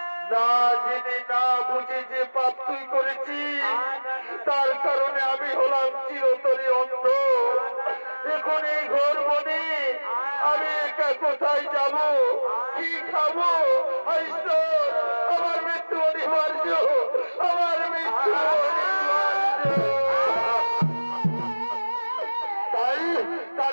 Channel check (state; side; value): inverted; both; correlation -1.00